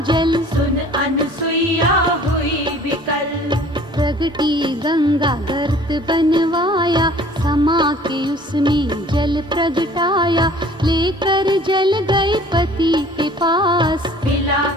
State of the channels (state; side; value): normal; both; correlation 0.51